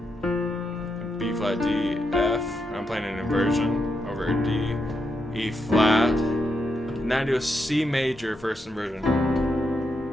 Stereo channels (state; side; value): normal; both; correlation 0.83